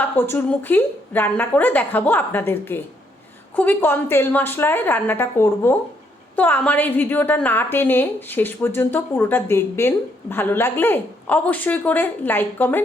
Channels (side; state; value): both; normal; correlation 0.72